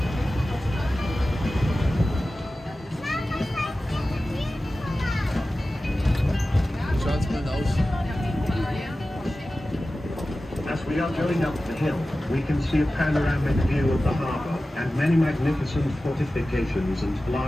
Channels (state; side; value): normal; both; correlation 0.95